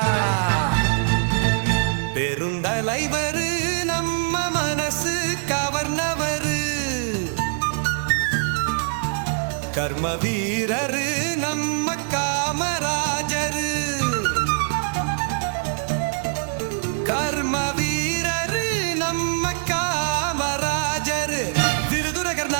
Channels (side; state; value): left; silent; digital silence